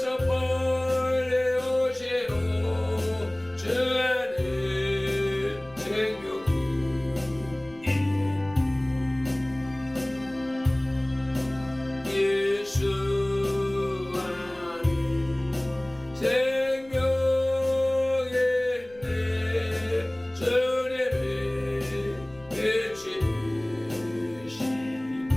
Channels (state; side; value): noise; left; rumble, 26 dB below the sound